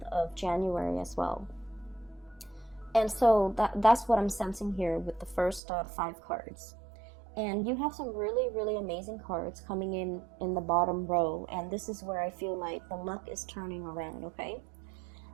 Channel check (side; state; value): left; drops out; at 5.6 s